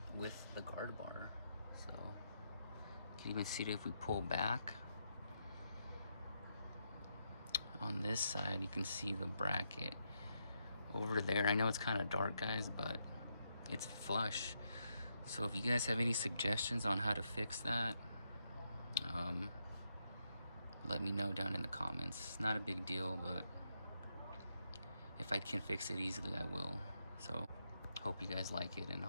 with the guard bar. So you can even see it if we pull back. On this side, you can see the bracket over there. I know it's kind of dark, guys, but it's flush. So if you guys have any suggestions on how to fix that, let me know down in the comments. It's not a big deal, but if I can fix it easily, I will. So hope you guys like it, and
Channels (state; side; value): inverted; both; correlation -0.81